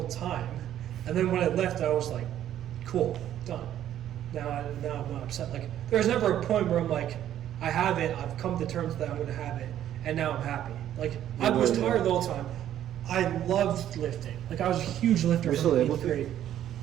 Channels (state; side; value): quieter; left; 11.4 dB